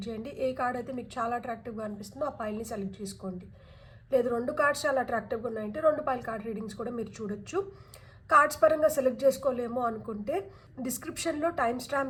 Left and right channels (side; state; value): both; identical; correlation 1.00